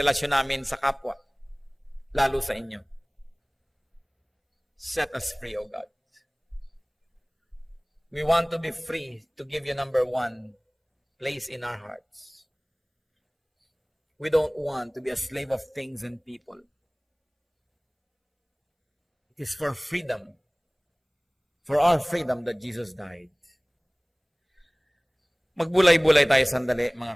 namin sa kapwa, lalo sa inyo. Set us free, O God. We want to be free to give you number one place in our hearts. We don't want to be a slave of things and people. It is for freedom, for our freedom that Jesus died. Magbulay-bulay tayo sandali,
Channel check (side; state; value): both; identical; correlation 1.00